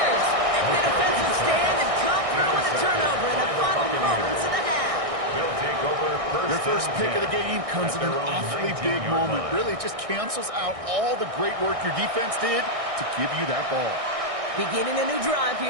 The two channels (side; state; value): left; late; 1.6 ms